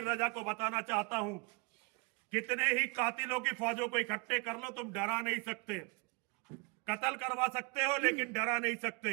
रजा को बताना चाहता हूं, कितने ही कातिलों की फौजों को इकट्ठे कर लो, तुम डरा नहीं सकते। कत्ल करवा सकते हो लेकिन डरा नहीं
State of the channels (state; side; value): quieter; left; 29.0 dB